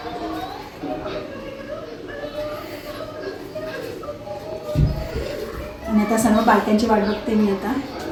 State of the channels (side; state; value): both; identical; correlation 1.00